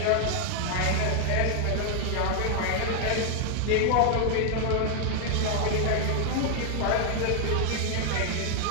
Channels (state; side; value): different; both; correlation 0.00